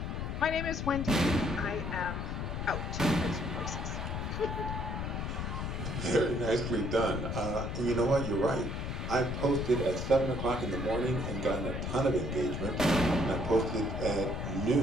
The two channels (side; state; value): left; noise; rumble, 3 dB below the sound